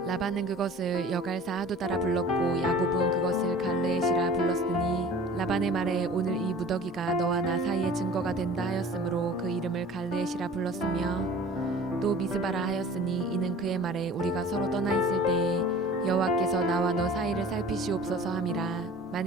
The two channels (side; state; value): both; normal; correlation 0.44